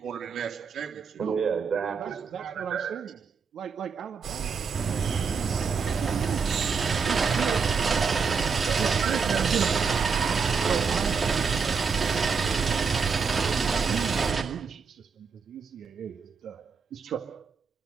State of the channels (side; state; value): left; quieter; 5.6 dB